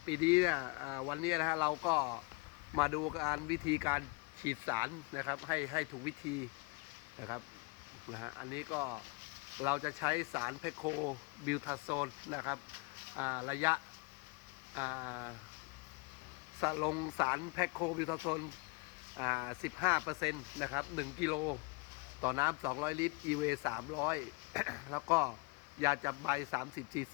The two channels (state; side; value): quieter; right; 29.2 dB